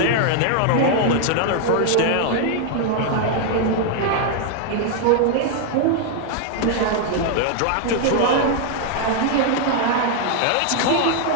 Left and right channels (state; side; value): different; both; correlation 0.00